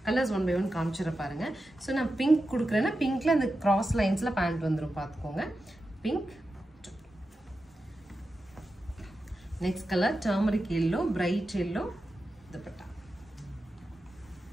கலர்ஸ் 1 by 1 காமிச்சிட பாருங்க. ஸோ நான் பிங்க் கொடுக்குறேன்னா பிங்க்ல அந்த கிராஸ் லைன்ஸில் பேண்ட் வந்துடும் பார்த்துக்கோங்க. Pink. Next colour turmeric yellow, bright yellow dupatta.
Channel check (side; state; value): both; normal; correlation 0.91